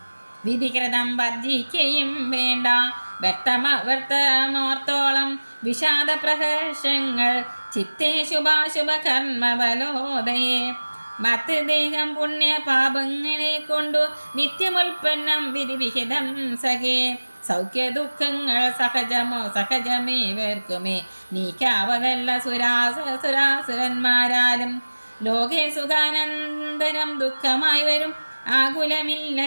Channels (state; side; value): inverted; both; correlation -1.00